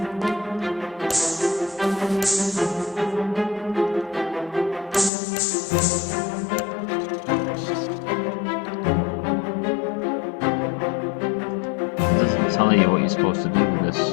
It doesn't tell you what you're supposed to do with this,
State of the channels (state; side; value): drops out; right; at 5.1 s